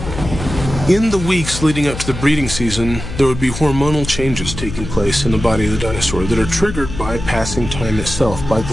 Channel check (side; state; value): left; noise; hum, 8 dB below the sound